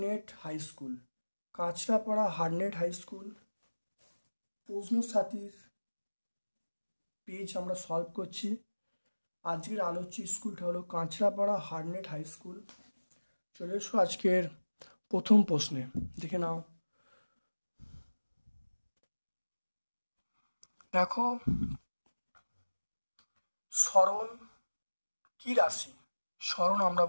high school. Kanchrapara Harnett high school প্রশ্ন সাথীর page আমরা সলভ করছি। আজকের আলোচ্য স্কুলটা হলো কাঁচরাপাড়া হারনেট হাই স্কুল। চলে এসো আজকের প্রথম প্রশ্নে, দেখে নাও। দেখো, সরণ কি রাশি? সরণ আমরা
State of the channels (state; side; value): inverted; both; correlation -1.00